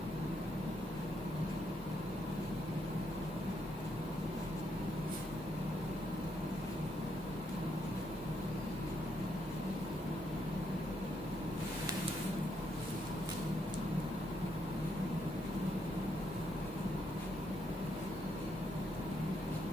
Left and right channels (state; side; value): normal; both; correlation 0.76